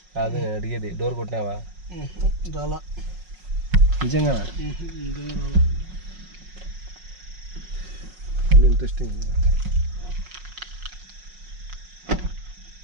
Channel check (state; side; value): late; left; 5.5 ms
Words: కాదు నేను అడిగేది. డోర్ కొట్టినావా? రాలా. నిజంగా రాలా. ఇంట్రెస్టింగ్.